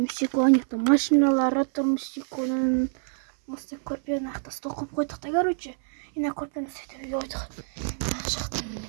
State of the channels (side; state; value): left; silent; 60 dB below the other